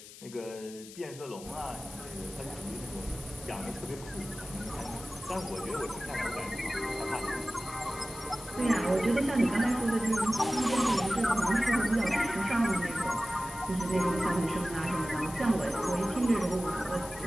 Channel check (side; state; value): left; noise; hiss, 16 dB below the sound